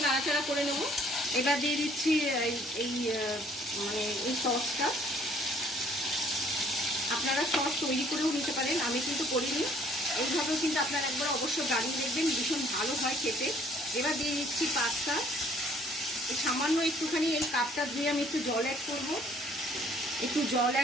নাড়াচাড়া করে নেব। এবার দিয়ে দিচ্ছি এই সসটা। আপনারা সস তৈরি করেও নিতে পারেন, আমি কিন্তু করিনি। এইভাবেও কিন্তু আপনারা একবার অবশ্যই বানিয়ে দেখবেন, ভীষণ ভালো হয় খেতে। এবার দিয়ে দিচ্ছি পাস্তা। এই সামান্য একটুখানি এই কাপটা ধুয়ে আমি একটু জল অ্যাড করব, একটু জল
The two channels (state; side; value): normal; both; correlation 0.60